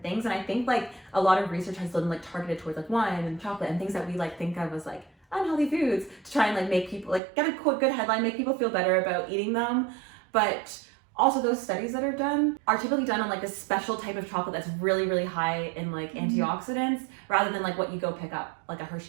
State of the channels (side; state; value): left; drops out; at 7.2 s